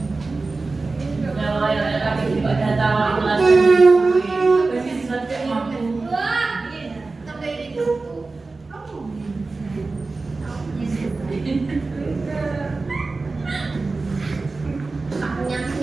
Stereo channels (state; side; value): quieter; left; 3.7 dB